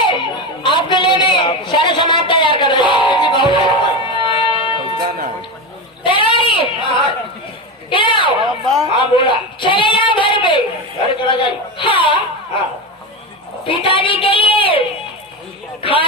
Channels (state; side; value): normal; both; correlation 0.18